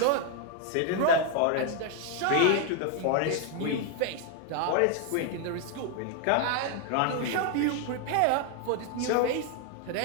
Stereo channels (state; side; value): different; both; correlation 0.00